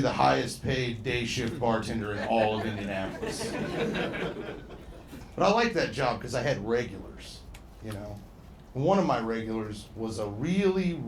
the highest paid day shift bartender in all of Indianapolis. But I liked that job because I had regulars, you know. One of my regulars was a really,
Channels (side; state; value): both; identical; correlation 1.00